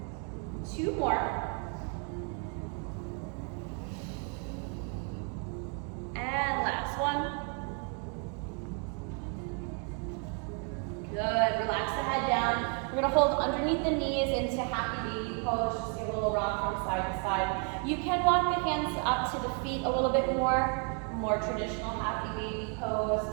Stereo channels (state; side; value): quieter; left; 39.9 dB